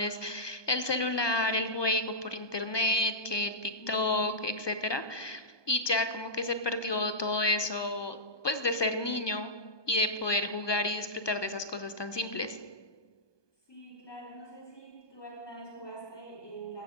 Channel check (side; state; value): right; late; 1.2 ms